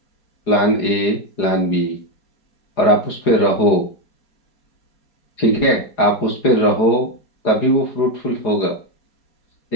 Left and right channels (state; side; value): late; right; 4.8 ms